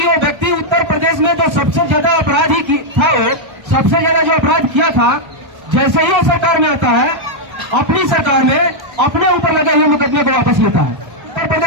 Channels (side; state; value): left; late; 1.3 ms